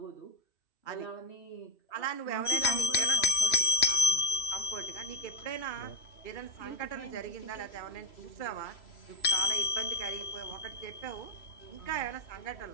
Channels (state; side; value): late; right; 3.0 ms